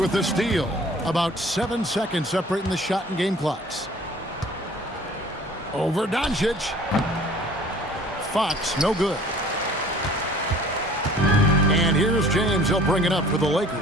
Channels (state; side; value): normal; both; correlation 0.50